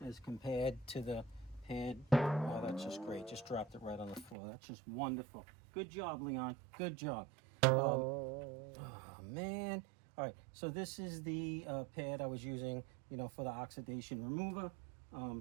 as compared to the pad. Oh, that's just great. Just dropped it right on the floor. That's just wonderful. Good job, Leon. Good job. Oh, man. All right, so this is the pad I was using, for the oxidation remover.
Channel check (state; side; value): drops out; left; at 4.4 s